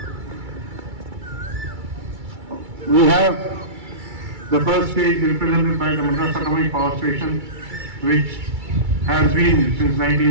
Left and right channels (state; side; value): late; left; 2.3 ms